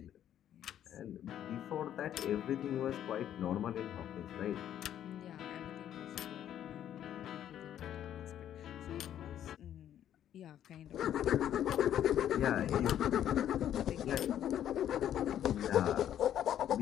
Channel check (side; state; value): right; quieter; 10.7 dB